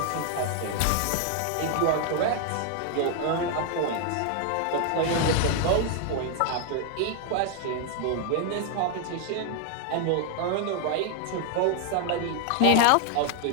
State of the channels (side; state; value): both; different; correlation 0.00